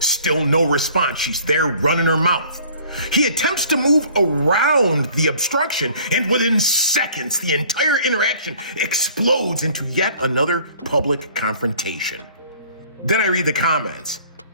Still no response. She's there running her mouth. He attempts to move around the obstruction, and within seconds, the entire interaction explodes into yet another public confrontation. Then I read the comments.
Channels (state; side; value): inverted; both; correlation -0.52